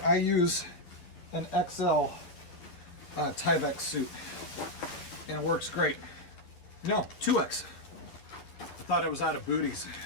use an XL Tyvek suit, and it works great. No, 2X. I thought I was out of booties.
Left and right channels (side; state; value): right; late; 11 ms